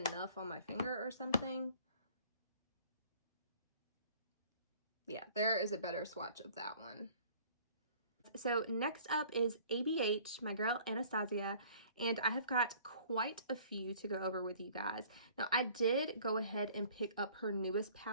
on my finger or something. Yeah, there is a better swatch of that one. So next up is ABH, my girl Anastasia, and I have got quite a few to go over with you guys. Now, I did go ahead and pick up her newest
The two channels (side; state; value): both; inverted; correlation -0.53